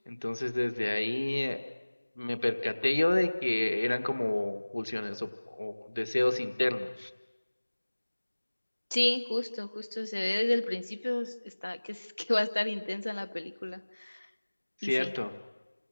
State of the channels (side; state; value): both; inverted; correlation -1.00